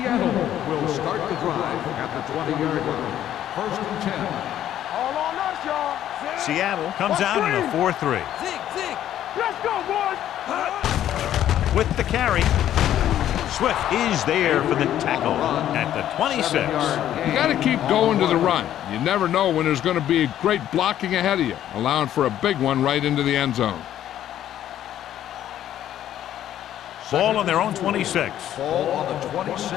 will start the drive at the 20-yard line. 1st and 10. All on us, y'all. Seattle comes out in a 4-3. Zig. Let's go, boys. With the carry, Swift is there for the tackle at the 26. You got to keep going to the run. You never know when there's going to be great blocking ahead of you, allowing for a big one right into the end zone. Ball on their own 26. Ball on the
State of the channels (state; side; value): quieter; right; 11.6 dB